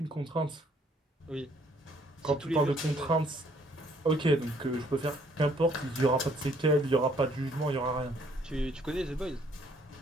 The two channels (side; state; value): both; normal; correlation 0.64